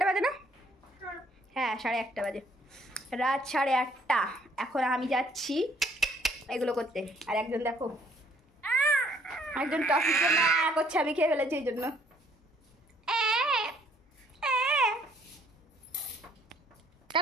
বাজে না? হ্যাঁ, 1:30 বাজে, রাত 8:30। এখন আমি যাচ্ছি এগুলো করতে। আর একজন দেখো, একজন টফির জন্য করছে, আমি খেয়ে ফেলেছি এই জন্য।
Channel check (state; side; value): normal; both; correlation 0.63